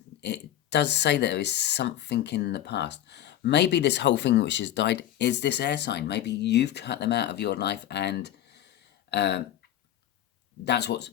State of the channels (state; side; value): quieter; right; 12.2 dB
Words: it does say that there is something in the past, Maybe this whole thing which has died is this air sign. Maybe you've cut them out of your life, and that's what's